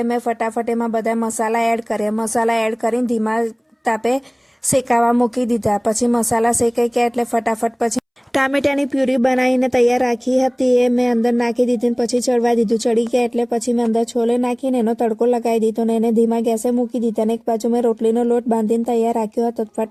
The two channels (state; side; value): identical; both; correlation 1.00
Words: મેં ફટાફટ એમાં બધા મસાલા એડ કર્યા। મસાલા એડ કરીને ધીમા તાપે શેકાવા મૂકી દીધા। પછી મસાલા શેકાઈ ગયા એટલે ફટાફટ પછી ટામેટાની પ્યુરી બનાવીને તૈયાર રાખી હતી એ મેં અંદર નાખી દીધી, પછી ચડવા દીધું। ચડી ગયા એટલે પછી મેં અંદર છોલે નાખીને એનો તડકો લગાવી દીધો ને એને ધીમા ગેસે મૂકી દીધા। અને એક બાજુ મેં રોટલીનો લોટ બાંધીને તૈયાર રાખ્યો હતો।